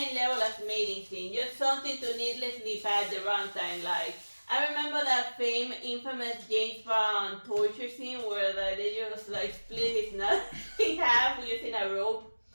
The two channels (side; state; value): both; inverted; correlation -1.00